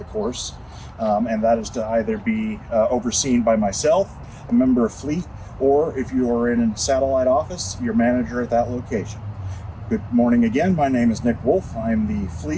course, and that is to either be overseen by myself, a member of fleet, or if you are in a satellite office, your manager at that location. Good morning again. My name is Nick Wolf. I'm the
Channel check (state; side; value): identical; both; correlation 1.00